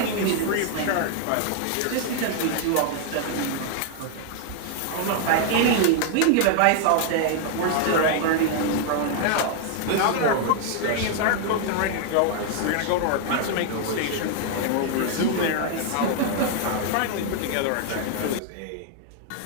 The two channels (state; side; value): different; both; correlation 0.00